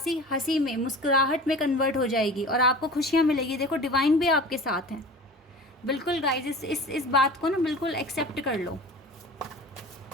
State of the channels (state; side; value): normal; both; correlation 0.38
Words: हंसी में, मुस्कुराहट में कन्वर्ट हो जाएगी और आपको खुशियाँ मिलेगी। देखो डिवाइन भी आपके साथ है। बिल्कुल गाइज इस बात को ना बिल्कुल एक्सेप्ट कर लो।